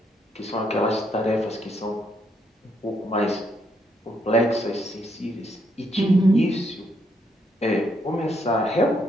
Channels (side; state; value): both; normal; correlation 0.74